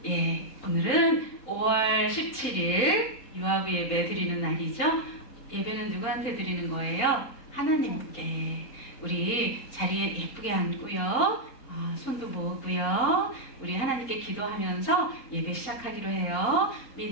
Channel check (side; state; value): right; late; 4.1 ms